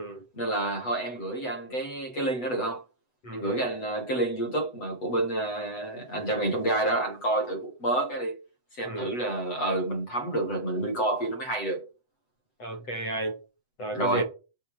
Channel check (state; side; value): late; right; 8.0 ms